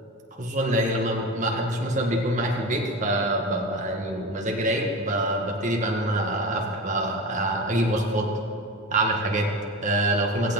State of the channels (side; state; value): both; normal; correlation 0.28